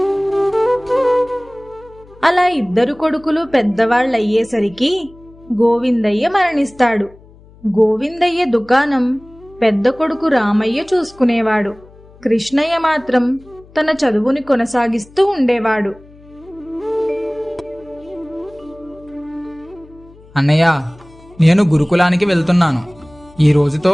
అలా 2 కొడుకులు పెద్దవాళ్ళయ్యేసరికి గోవిందయ్య మరణిస్తాడు. గోవిందయ్య దుకాణం పెద్ద కొడుకు రామయ్య చూసుకునేవాడు. కృష్ణయ్య మాత్రం తన చదువుని కొనసాగిస్తూ ఉండేవాడు. అన్నయ్య, నేను గురుకులానికి వెళ్తున్నాను. ఈ రోజుతో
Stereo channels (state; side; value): noise; left; hum, 25 dB below the sound